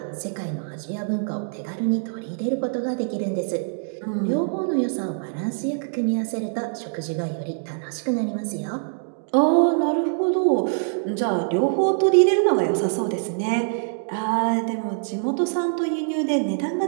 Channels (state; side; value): silent; left; digital silence